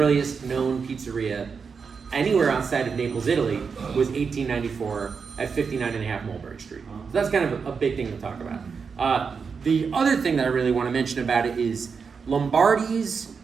known pizzeria anywhere outside of Naples, Italy, was 1894 at 59.5 Mulberry Street. So that's kind of a big thing to talk about. The other thing that I really want to mention about it is Lombardi's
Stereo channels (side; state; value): left; quieter; 5.6 dB